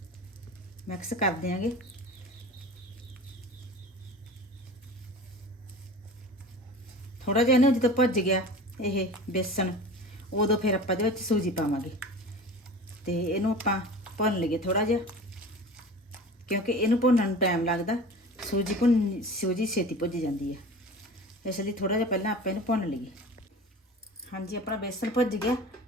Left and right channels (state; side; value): normal; both; correlation 0.37